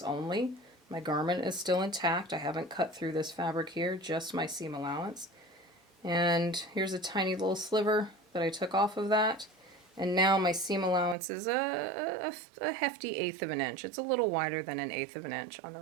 only. My garment is still intact. I haven't cut through this fabric here, just my seam allowance. And here's a tiny little sliver that I took off of that. And now my seam allowance is a hefty 1/8 of an inch. It's a little wider than 1/8 of an inch on the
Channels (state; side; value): drops out; left; at 11.2 s